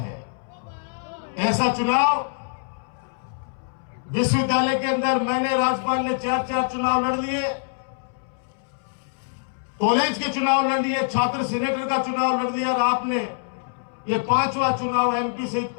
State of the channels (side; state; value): right; silent; 62 dB below the other